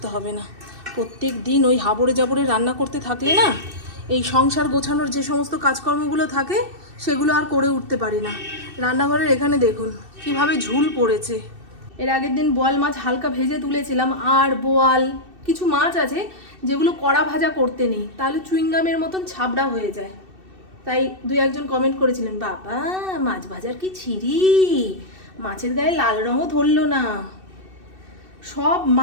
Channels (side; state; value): left; late; 2.7 ms